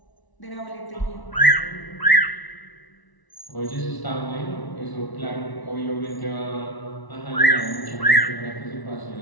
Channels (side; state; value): right; late; 1.0 ms